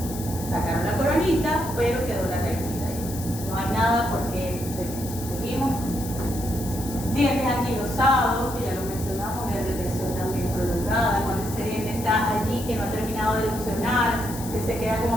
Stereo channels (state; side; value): noise; left; hiss, 12 dB below the sound